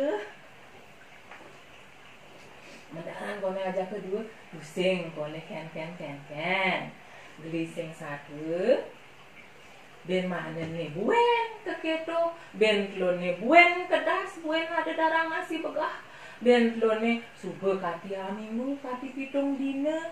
pusing kone ken gelising satu ben mana nih buen keketo ben klone buen kedas buen ada darang nasi begah ben klone sube kati minggu kati pitung dina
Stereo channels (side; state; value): both; identical; correlation 1.00